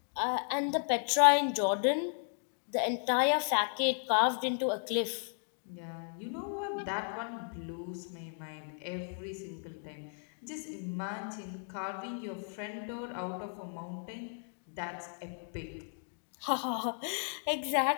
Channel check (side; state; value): right; silent; 55 dB below the other